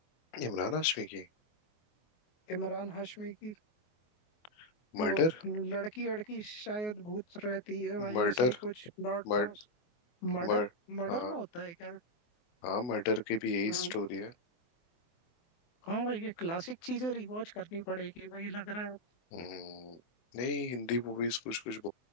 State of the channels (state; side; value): late; right; 24 ms